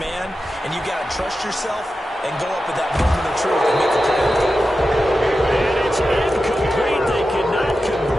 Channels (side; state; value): both; normal; correlation 0.91